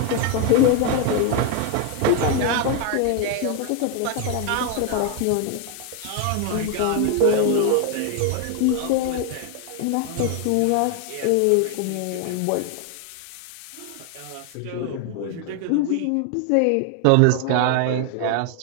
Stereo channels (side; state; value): both; different; correlation 0.01